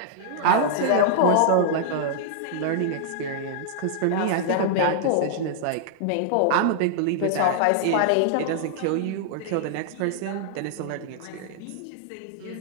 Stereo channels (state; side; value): different; both; correlation -0.01